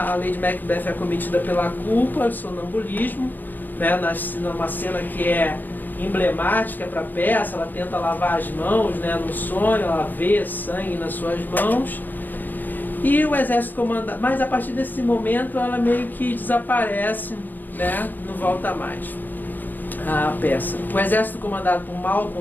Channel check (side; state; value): right; late; 0.090 ms